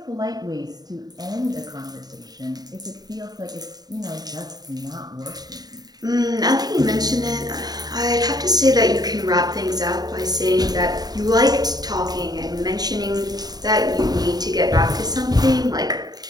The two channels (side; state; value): left; late; 0.19 ms